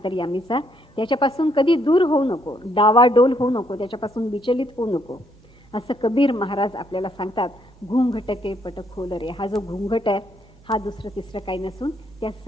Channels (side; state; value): both; normal; correlation 0.71